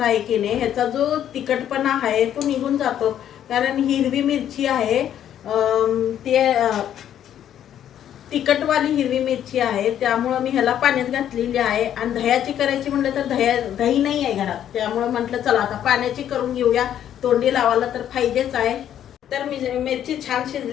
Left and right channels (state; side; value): quieter; right; 10.4 dB